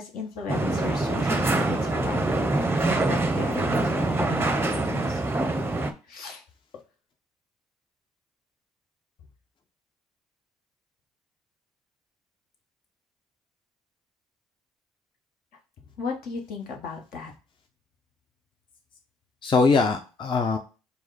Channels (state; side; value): normal; both; correlation 0.72